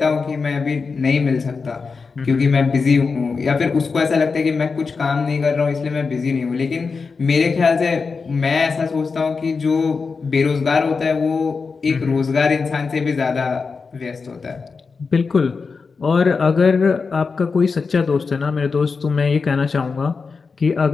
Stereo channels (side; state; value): right; quieter; 4.8 dB